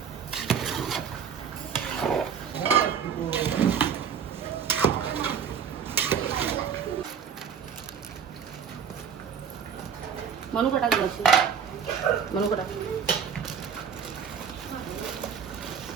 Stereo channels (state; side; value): quieter; left; 7.3 dB